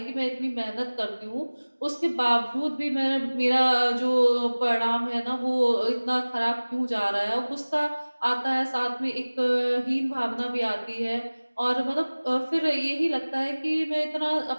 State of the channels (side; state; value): both; inverted; correlation -1.00